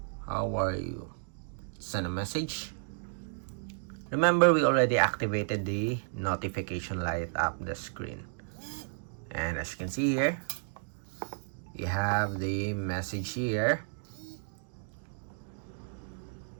how are you, send a message. Remember, we already activated the notification light up the screen, and as you can see here, we have the message here.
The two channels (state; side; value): silent; left; digital silence